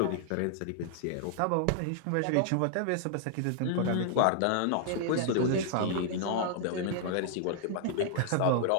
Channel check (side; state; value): both; different; correlation -0.01